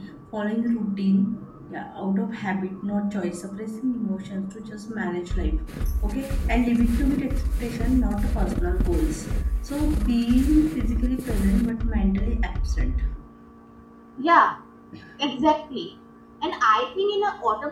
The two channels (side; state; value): both; identical; correlation 1.00